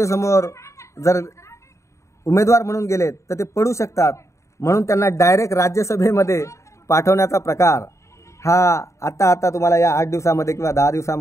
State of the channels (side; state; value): right; late; 0.14 ms